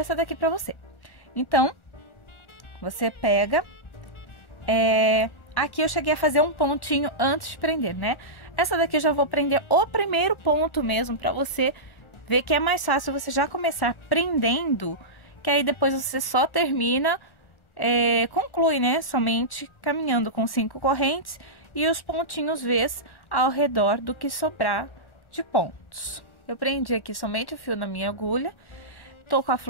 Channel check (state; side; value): late; right; 1.4 ms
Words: daqui pra você. Então, você pega, aqui eu cheguei a fazer um pontinho antes de prender, né? Essa daqui eu já vou prender o primeiro ponto mesmo, pra você ver que é mais fácil você já começar prendendo, que aí depois você só termina, conclui, né? Somente caminhando com 5 correntes e os pontinhos Vs ao redor do que sobrar de pontos. Eu prendi aqui somente o fio na minha agulha, tô com a